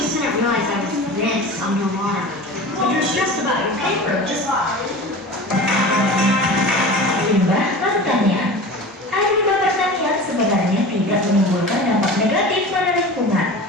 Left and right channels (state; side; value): normal; both; correlation 0.35